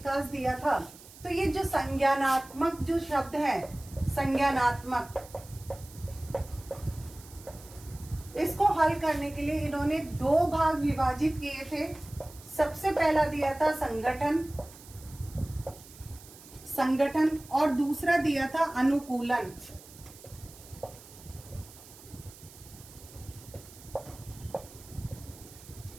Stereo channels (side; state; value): right; noise; hiss, 20 dB below the sound